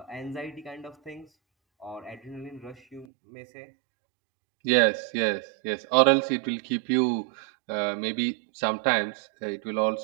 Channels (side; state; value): left; drops out; at 3.1 s